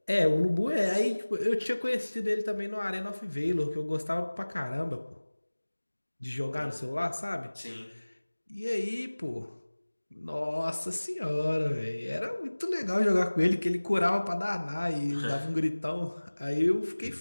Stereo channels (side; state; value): both; inverted; correlation -1.00